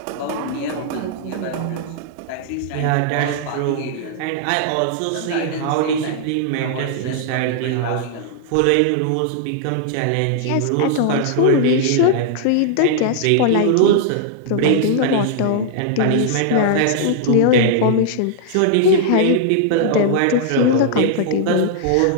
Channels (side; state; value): both; different; correlation -0.01